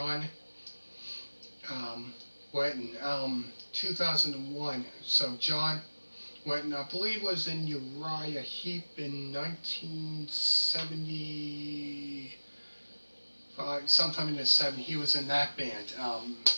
Wetton, 2001. So John Wetton, I believe, was in Uriah Heep in 1975, sometime in the 70s. He was in that band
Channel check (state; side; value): inverted; both; correlation -1.00